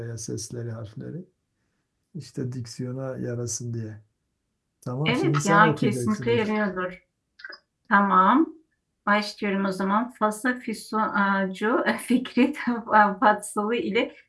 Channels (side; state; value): both; identical; correlation 1.00